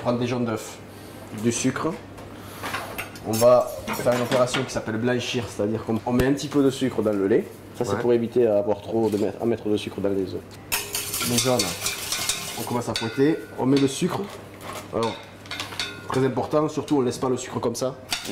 des jaunes d'œufs, du sucre. On va faire une opération qui s'appelle blanchir, c'est-à-dire qu'on met un petit peu de sucre dans le lait. Ça c'est pour éviter à mettre de sucre dans les œufs. Les jaunes, on commence à fouetter, on met le sucre. Alors, très important, surtout on ne laisse pas le sucre comme ça.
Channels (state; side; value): identical; both; correlation 1.00